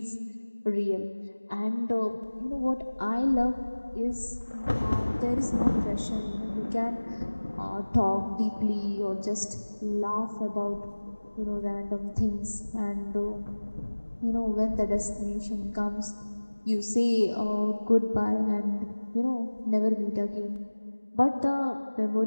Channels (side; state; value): both; inverted; correlation -1.00